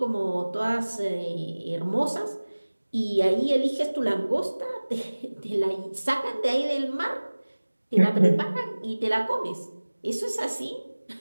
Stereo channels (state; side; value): inverted; both; correlation -1.00